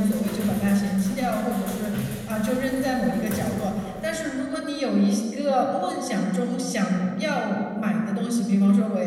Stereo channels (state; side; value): identical; both; correlation 1.00